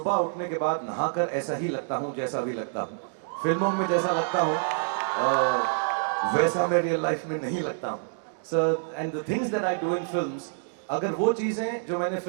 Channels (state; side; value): silent; left; digital silence